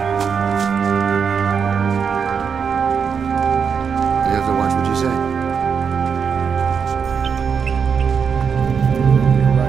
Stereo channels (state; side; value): quieter; left; 6.4 dB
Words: You have to watch what you say. You're